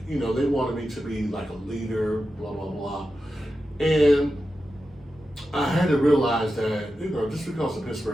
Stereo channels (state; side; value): normal; both; correlation 0.91